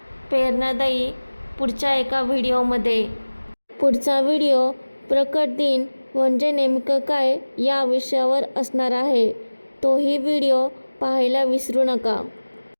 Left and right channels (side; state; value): both; inverted; correlation -1.00